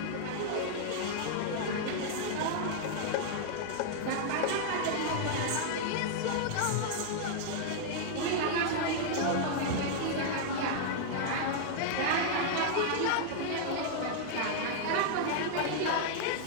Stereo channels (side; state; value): both; different; correlation -0.01